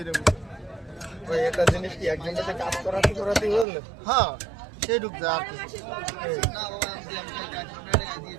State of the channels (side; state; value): left; drops out; at 3.7 s